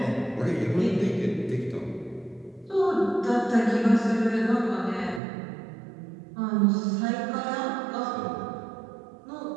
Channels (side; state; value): left; drops out; at 5.2 s